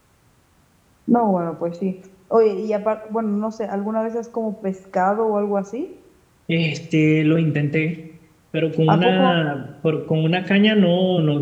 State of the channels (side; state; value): both; identical; correlation 1.00